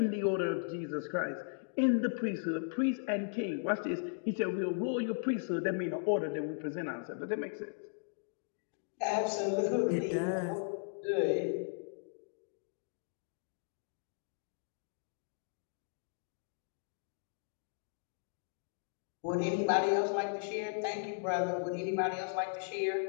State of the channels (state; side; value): silent; right; digital silence